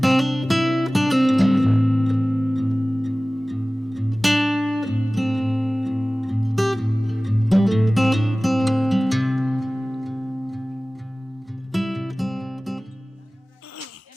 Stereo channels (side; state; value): both; normal; correlation 0.98